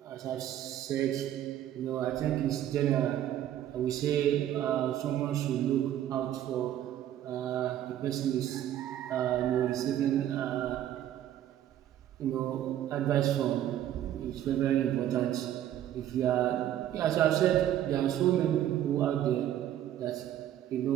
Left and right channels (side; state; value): left; quieter; 11.7 dB